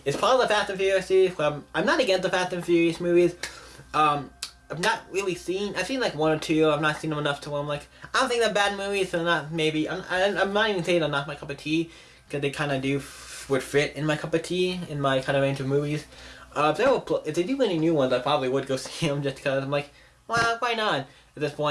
It's part of the Fast and Furious series. I'm not against the Fast and Furious movies. I've not really I've seen like one or two. I've not seen them enough to where I'm like, I don't think they're bad movies, so not maybe. I'm not even saying they're not my cup of tea, because they kind of would fit in my cup of tea, in my kind of range of movies. If they do any new ones, I probably would go see them just because I'm like, well, why not at this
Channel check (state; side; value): identical; both; correlation 1.00